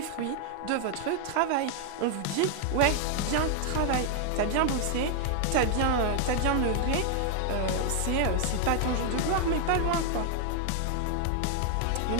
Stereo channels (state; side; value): different; both; correlation 0.00